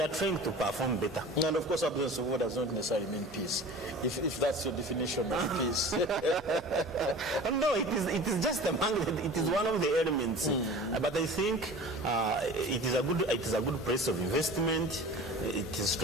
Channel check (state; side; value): noise; right; hum, 23 dB below the sound